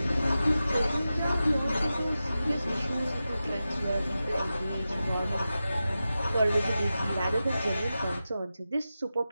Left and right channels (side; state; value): both; inverted; correlation -0.93